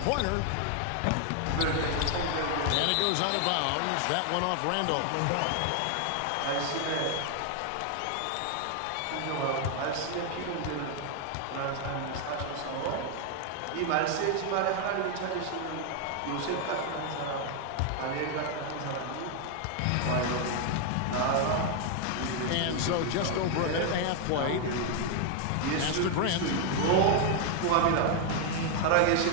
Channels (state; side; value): different; both; correlation 0.00